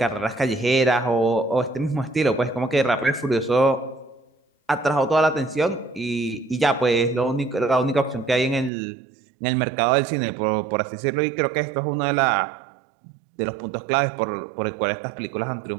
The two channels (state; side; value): drops out; left; at 8.7 s